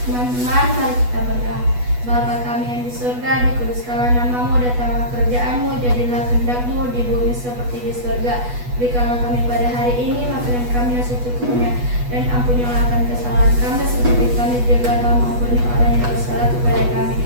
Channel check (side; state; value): left; late; 8.2 ms